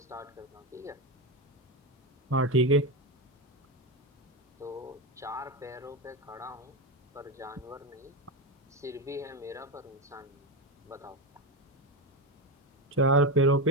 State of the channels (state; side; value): normal; both; correlation 0.14